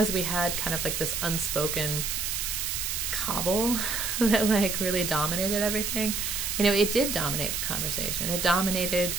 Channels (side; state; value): right; noise; hiss, 1 dB below the sound